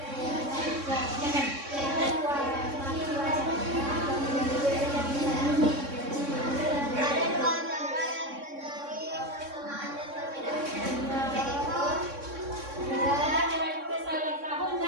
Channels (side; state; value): left; late; 3.6 ms